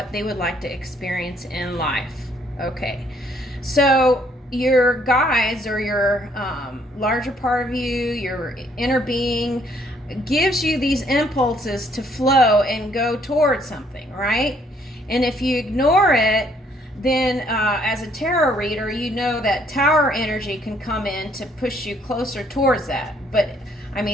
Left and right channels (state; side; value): normal; both; correlation 0.66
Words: they would like to experience in life. Okay, so your guides or your larger part of you, your inner being, gives you these impulses to flow and go towards something, right? And if you ignore it, then as a tarot reader, you know that tower energy can come in to push you closer towards that. But I